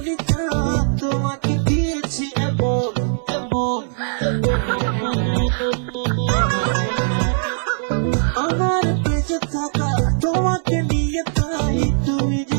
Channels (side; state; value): left; silent; 66 dB below the other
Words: তোমাকে দিয়েছি এমন এমন আমার বেঁচে থাকা তোমাকে নিয়ে যাই তুমি যে